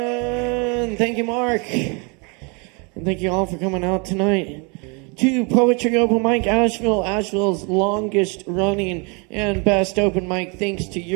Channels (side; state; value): left; quieter; 32.8 dB